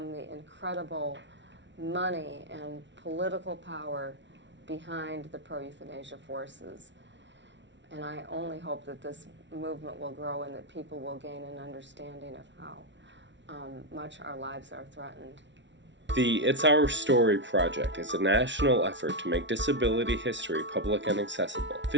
the incredible money and political power behind the pro-euthanasia forces. And I only hope that this movement will grow and that people will gain an understanding of how much our lives are threatened. The It's Our Story project is a national effort to make disability history public and accessible.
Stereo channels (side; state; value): left; late; 0.53 ms